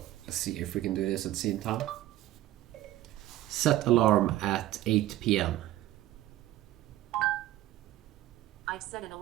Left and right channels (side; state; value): left; quieter; 14.8 dB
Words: let's see if we can do this at the same time. Set alarm at 8 p.m. I've set an